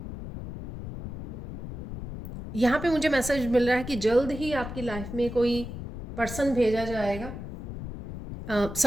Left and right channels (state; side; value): noise; left; rumble, 9 dB below the sound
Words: यहाँ पे मुझे मैसेज मिल रहा है कि जल्द ही आपकी लाइफ में कोई पर्सन भेजा जाएगा।